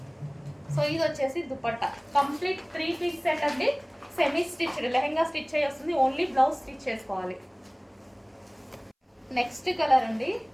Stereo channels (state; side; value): identical; both; correlation 1.00